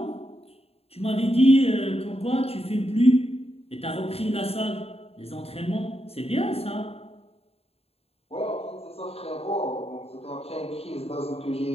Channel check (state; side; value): late; right; 0.29 ms